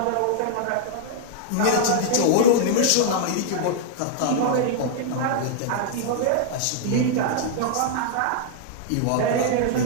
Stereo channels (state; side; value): different; both; correlation -0.01